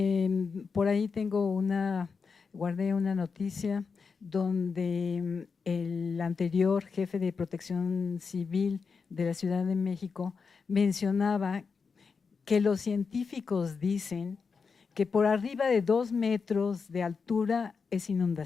Por ahí guardé una noticia donde el anterior jefe de Protección Civil de la Ciudad de México mencionaba que los científicos dicen que por arriba de 2 metros de altura es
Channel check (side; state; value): right; quieter; 5.3 dB